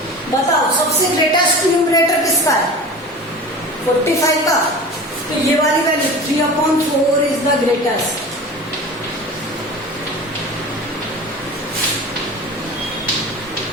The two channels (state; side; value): normal; both; correlation 0.35